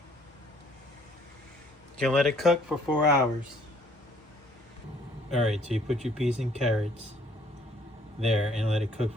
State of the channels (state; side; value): normal; both; correlation 0.61